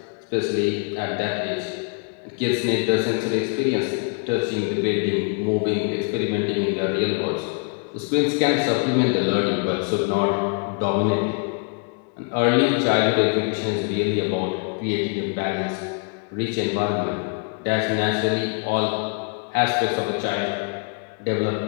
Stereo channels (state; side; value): quieter; right; 34.5 dB